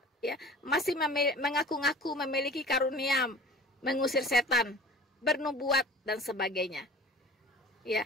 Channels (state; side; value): normal; both; correlation 0.42